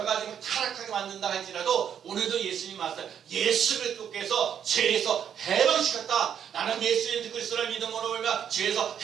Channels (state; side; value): quieter; left; 8.7 dB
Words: 가지 타락하게 만든다 할지라도 오늘도 예수님 말씀 예수 그리스도께서 죄에서 해방시켰다. 나는 예수 그리스도를 믿음으로 우리가 죄에서